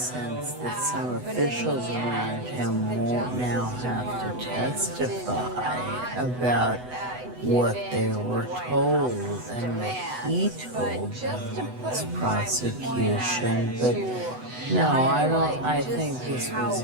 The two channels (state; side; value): late; left; 8.0 ms